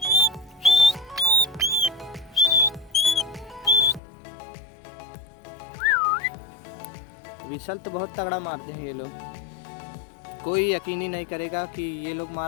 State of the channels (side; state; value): right; drops out; at 4.0 s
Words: विसल तो बहुत तगड़ा मारते हैं ये लोग। कोई यकीन ही नहीं करेगा कि ये लोग